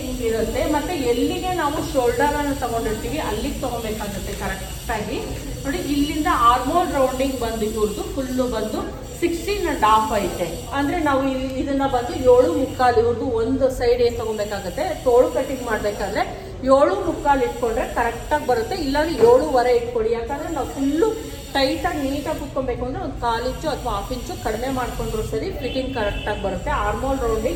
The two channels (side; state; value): both; identical; correlation 1.00